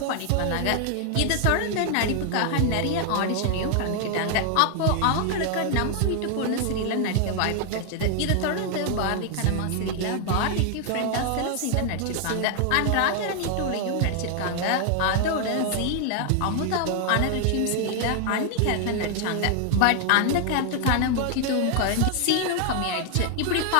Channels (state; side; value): different; both; correlation 0.00